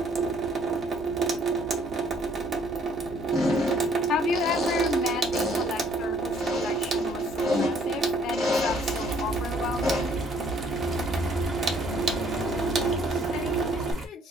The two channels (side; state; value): both; normal; correlation 0.63